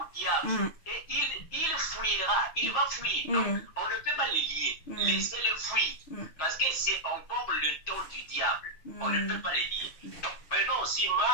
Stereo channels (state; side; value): late; right; 6.3 ms